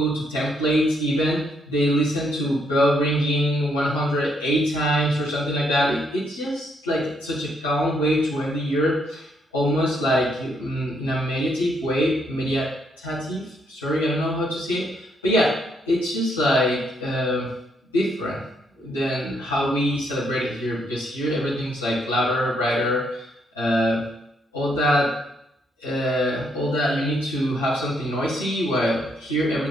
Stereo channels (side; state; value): both; normal; correlation 0.73